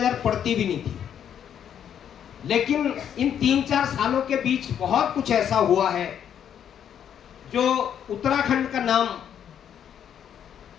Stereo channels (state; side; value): quieter; right; 9.1 dB